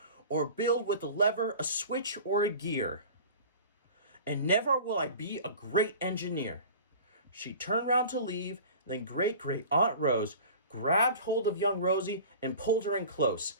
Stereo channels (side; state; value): both; inverted; correlation -0.40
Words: or build with a lever, a switch, or a gear. And never will I be a great engineer. She turned round to leave, then great-great-aunt Rose grabbed hold of young Rosie and pulled her in close,